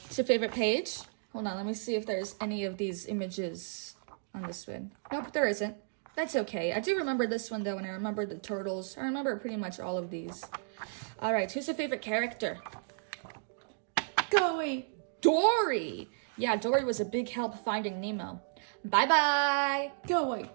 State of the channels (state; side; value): silent; left; digital silence